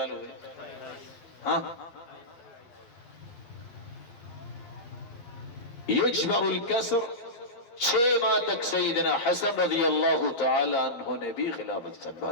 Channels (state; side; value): late; right; 12 ms